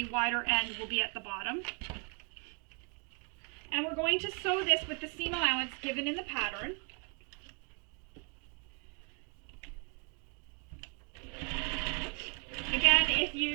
wider end will be at the bottom. And we're going to sew this with the seam allowance given in the pattern. Again, if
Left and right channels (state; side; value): quieter; left; 36.2 dB